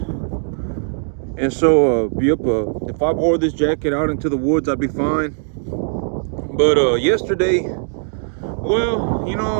And so if I wore this jacket out into the woods, I'd be fine. But yesterday, well, you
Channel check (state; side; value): silent; left; digital silence